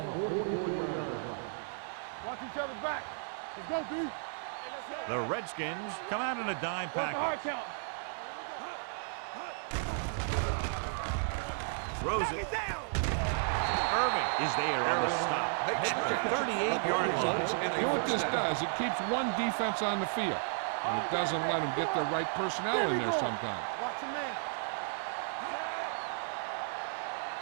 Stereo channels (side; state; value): left; silent; digital silence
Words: 44-yard line. Watch each other back. Let's go, D. Hey, let's go. The Redskins come out in a dime package. Here we go. Throws it. Irving is there on the stop at the 38-yard line. You know what this does? It keeps one defense on the field, and it doesn't let them get the right personnel in there sometimes. Watch the man.